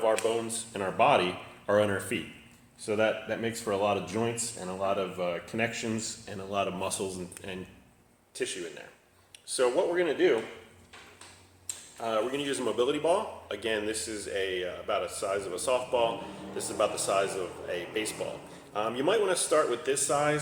our bones in our body are on our feet. So that makes for a lot of joints and a lot of connections and a lot of muscles and tissue in there. So what we're going to do, we're going to use a mobility ball. Again, this is about the size of a softball. This is about the size of a baseball. You might want to start with this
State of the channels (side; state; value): both; identical; correlation 1.00